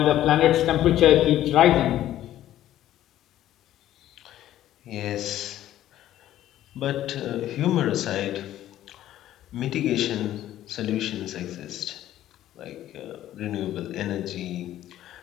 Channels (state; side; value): quieter; right; 12.9 dB